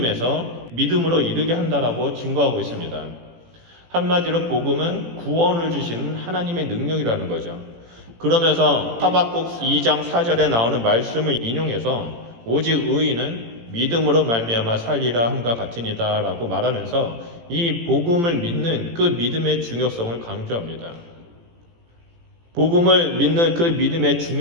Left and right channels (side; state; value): left; late; 18 ms